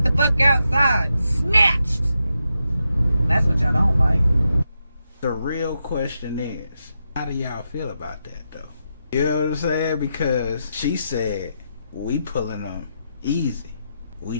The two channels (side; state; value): both; inverted; correlation -0.85